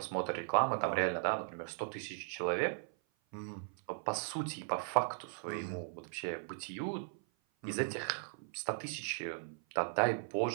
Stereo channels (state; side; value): silent; left; 53 dB below the other